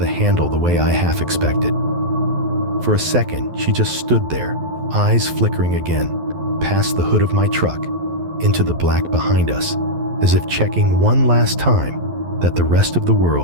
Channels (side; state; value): left; late; 11 ms